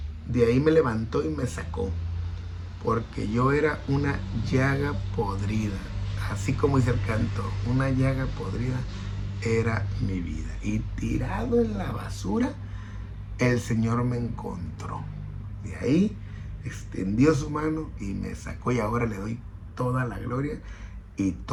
De ahí me levantó y me sacó. Porque yo era una llaga podrida. Así como dice el canto, una llaga podrida era mi vida. Y tirado en la basura, el Señor me encontró. De ahí extendió su mano y me sacó, y ahora le doy toda la gloria y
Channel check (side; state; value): both; identical; correlation 1.00